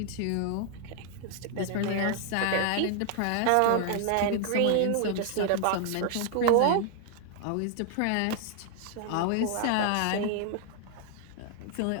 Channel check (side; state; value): both; different; correlation 0.00